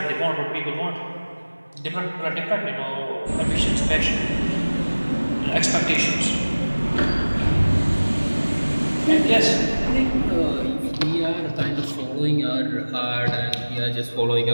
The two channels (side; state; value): both; inverted; correlation -1.00